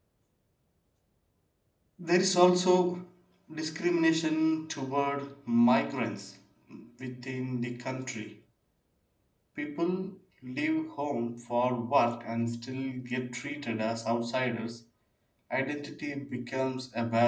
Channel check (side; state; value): both; identical; correlation 1.00